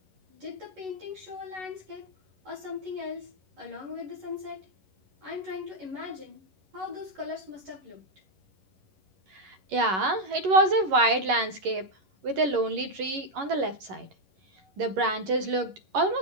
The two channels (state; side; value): late; left; 11 ms